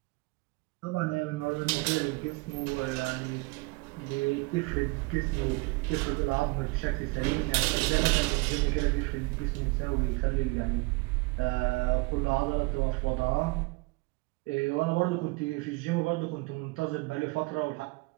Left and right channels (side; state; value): left; quieter; 26.0 dB